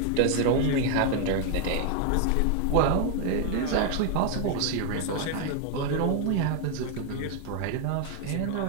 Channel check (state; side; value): different; both; correlation 0.00